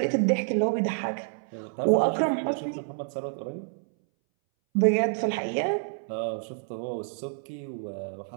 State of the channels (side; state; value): left; silent; 59 dB below the other